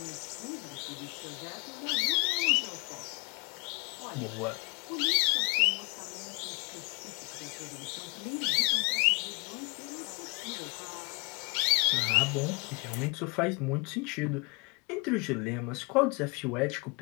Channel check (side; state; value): right; quieter; 31.6 dB